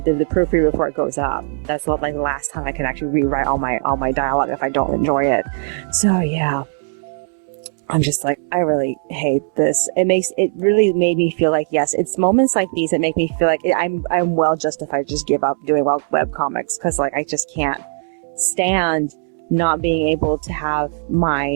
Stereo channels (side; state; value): left; silent; digital silence